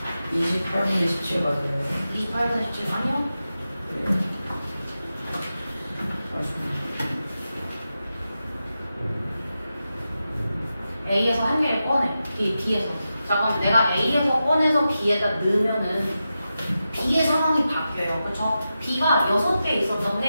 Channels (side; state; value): both; inverted; correlation -0.91